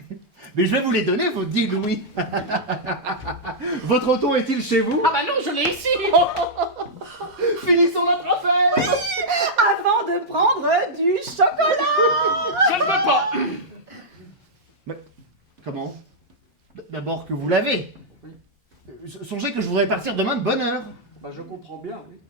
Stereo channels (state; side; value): normal; both; correlation -0.08